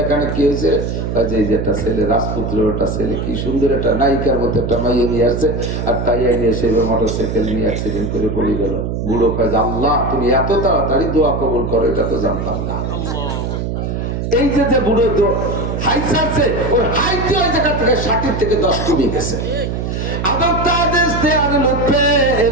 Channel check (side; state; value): right; noise; hum, 3 dB below the sound